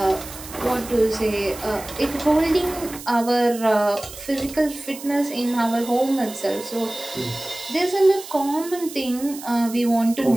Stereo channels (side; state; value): right; noise; hiss, 14 dB below the sound